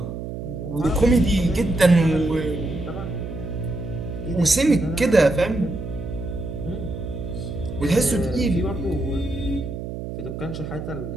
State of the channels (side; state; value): right; noise; hum, 7 dB below the sound